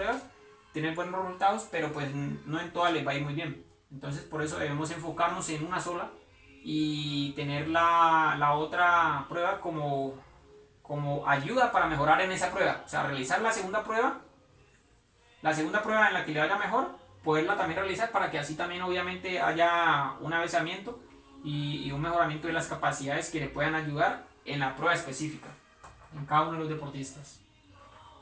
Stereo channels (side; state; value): both; identical; correlation 1.00